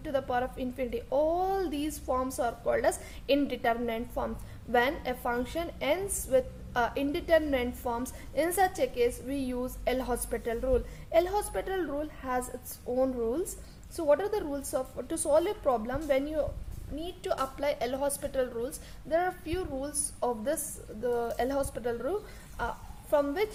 to the power of infinity. All these forms are called as indeterminate forms. When a function ends with indeterminate forms, in such a case we use L'Hospital rule. L'Hospital rule has its own rules. So what are the rules to solve a problem when you need to apply L'Hospital rules? There are few rules of the L'Hospital rule from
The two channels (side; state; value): both; identical; correlation 1.00